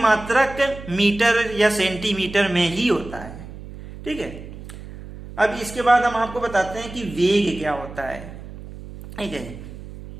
मीटर या सेंटीमीटर में ही होता है। ठीक है, अब इसके बाद हम आपको बताते हैं कि वेग क्या होता है। ठीक है,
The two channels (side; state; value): right; noise; hum, 14 dB below the sound